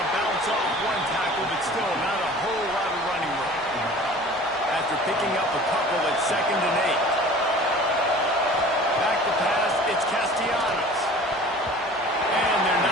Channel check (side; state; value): both; normal; correlation 0.44